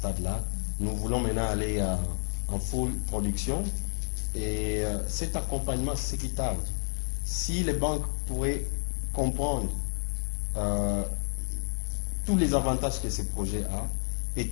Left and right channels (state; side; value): silent; right; digital silence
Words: Nous voulons maintenant aller en full production. Et cet accompagnement, c'est ce qui tarde. Si les banques pourraient comprendre tous les avantages que ce projet a et